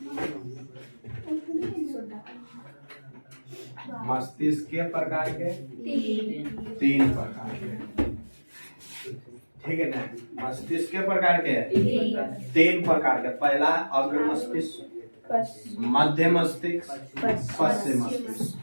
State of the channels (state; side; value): inverted; both; correlation -1.00